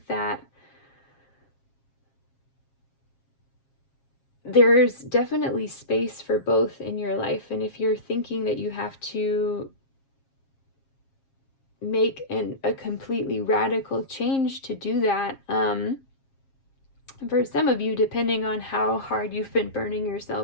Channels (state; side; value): late; right; 7.4 ms